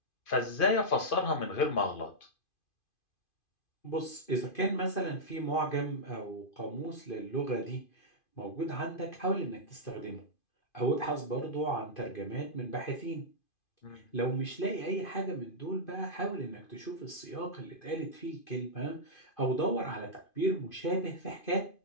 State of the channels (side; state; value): right; late; 2.5 ms